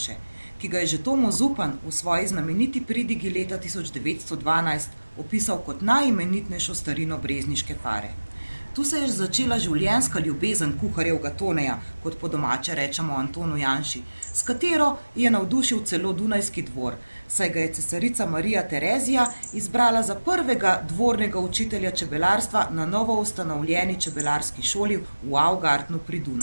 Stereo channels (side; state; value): both; inverted; correlation -1.00